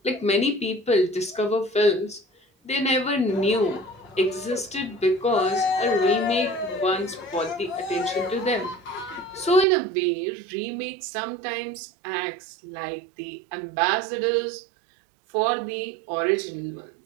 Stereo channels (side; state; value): left; drops out; at 9.7 s